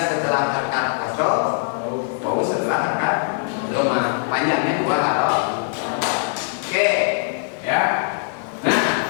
setelah harakat kasroh, wau setelah harakat dhamma. Panjangnya 2 huruf. Oke, ya. Nah,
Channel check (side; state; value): right; silent; 65 dB below the other